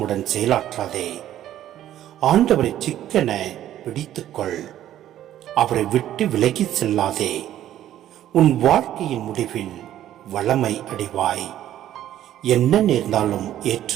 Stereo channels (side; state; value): left; quieter; 12.2 dB